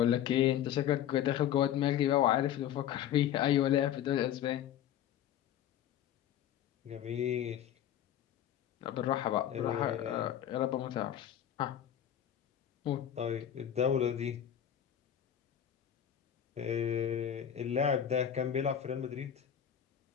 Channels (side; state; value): right; quieter; 10.3 dB